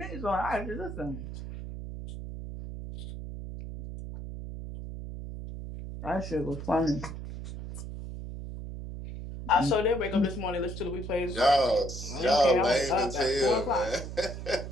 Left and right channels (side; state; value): right; noise; hum, 9 dB below the sound